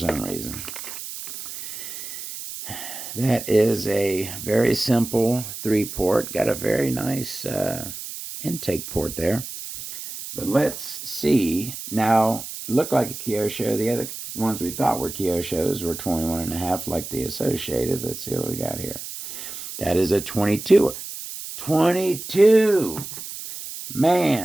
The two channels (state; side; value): noise; right; hiss, 9 dB below the sound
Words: reason. That is a very simple 3-port. Got a very nice intake port there. But let's see. Now, it looked like a Kyosho. The other ones we thought were Kyoshos were 21.5 like the Associated. Let's see what we got here. That is a 22. 22!